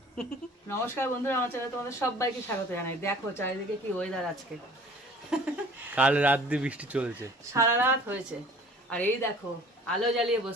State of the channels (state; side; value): normal; both; correlation 0.48